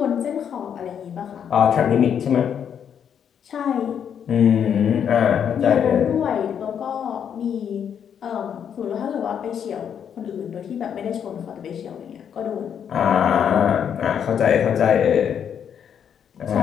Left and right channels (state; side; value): quieter; right; 8.3 dB